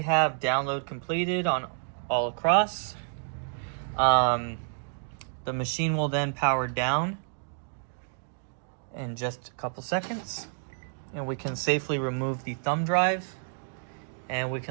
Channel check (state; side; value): silent; left; digital silence